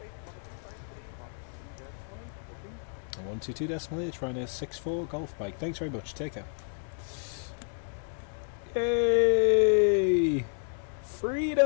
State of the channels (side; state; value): right; silent; 57 dB below the other